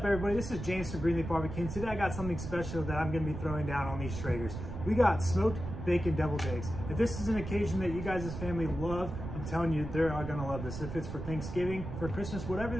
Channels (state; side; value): noise; right; rumble, 7 dB below the sound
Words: everybody? This is James from Greenleaf Barbecue, and today I got something special that I'm going to be throwing down on these Traegers. We got smoked bacon deviled eggs. If this is an occasion that you guys' family love, I'm telling you, they're all going to love this. If it's for Thanksgiving, for Christmas, whatever